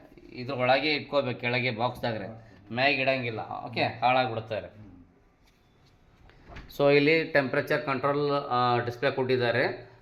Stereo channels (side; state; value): both; identical; correlation 1.00